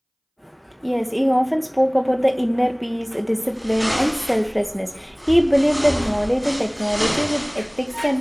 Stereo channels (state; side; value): identical; both; correlation 1.00